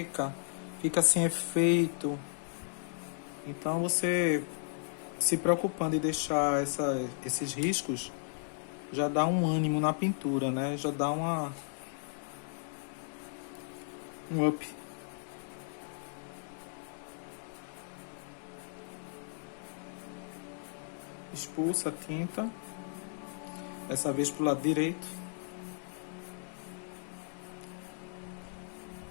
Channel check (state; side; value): silent; right; digital silence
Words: fica sem efeito. Então você se preocupando em deixar esses riscos, já dá um ânimo na pintura, né? Já dá um up. Expulsa a tinta, dessa vez pro lado direito.